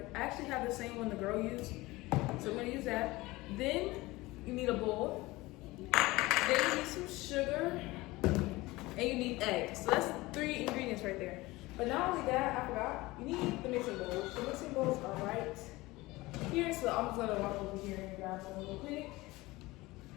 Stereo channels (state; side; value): quieter; right; 20.5 dB